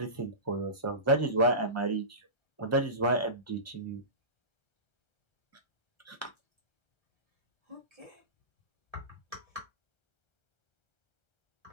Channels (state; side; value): late; right; 1.3 ms